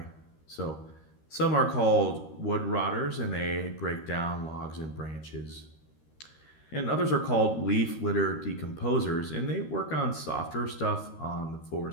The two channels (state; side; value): late; right; 13 ms